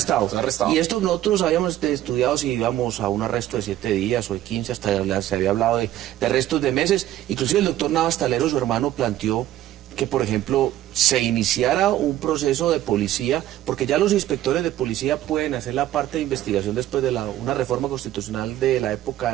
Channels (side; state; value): left; quieter; 13.4 dB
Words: está arrestado. Y esto nosotros habíamos estudiado si íbamos a un arresto de 7 días o de 15, hasta se había hablado de arrestos de meses. Inclusive el doctor Navas Talero, su hermano, planteó que, por ejemplo, se iniciara un proceso de policía, porque ya los inspectores de policía pueden hacer la parte de investigación después de una reforma constitucional de la época